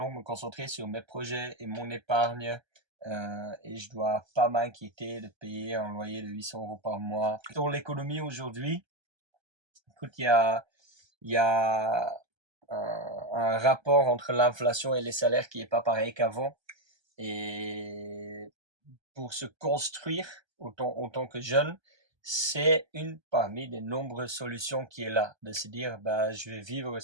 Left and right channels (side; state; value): left; late; 1.3 ms